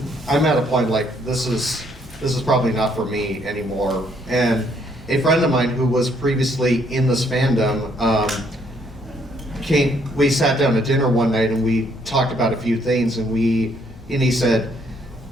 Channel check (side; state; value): both; normal; correlation 0.68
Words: I'm at a point like, this is probably not for me anymore. And a friend of mine who was previously in this fandom we sat down at dinner one night and we talked about a few things, and he said,